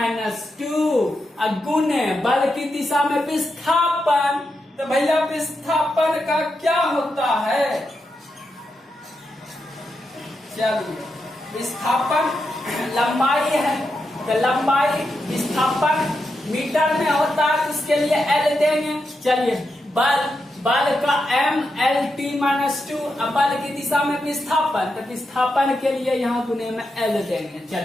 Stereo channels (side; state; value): both; normal; correlation 0.86